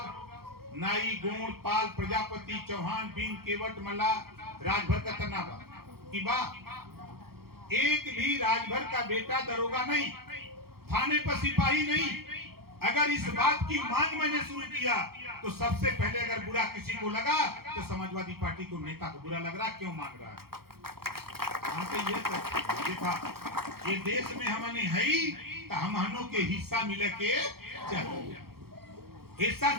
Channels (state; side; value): late; left; 0.95 ms